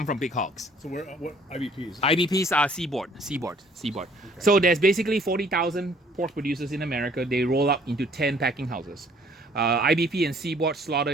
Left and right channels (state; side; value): normal; both; correlation 0.59